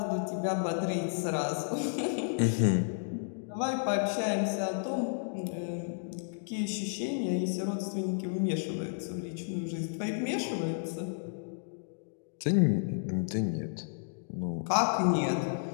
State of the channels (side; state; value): right; silent; digital silence